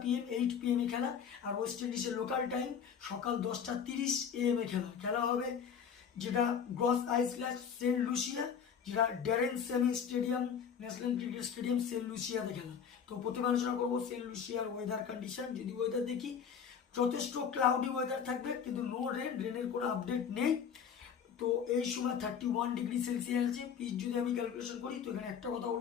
PM 8 PM এ খেলা। আর ওয়েস্ট ইন্ডিজের লোকাল টাইম সকাল 10টা 30 AM এ খেলা হবে, যেটা গ্রস আইল্যান্ড সেন্ট লুসিয়া, যেটা Daren Sammy stadium, national cricket stadium Saint লুসিয়াতে খেলা। তো প্রথমে আলোচনা করবো সেন্ট লুসিয়ার ওয়েদার কন্ডিশন। যদি ওয়েদার দেখি, যথেষ্ট ক্লাউডি ওয়েদার থাকবে, কিন্তু নো রেনের কোনো আপডেট নেই। তো এই সময় 31°C আছে। পিচ যদি আমি ক্যালকুলেশন করি, তো এখানে একটা কথা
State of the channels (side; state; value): right; quieter; 7.4 dB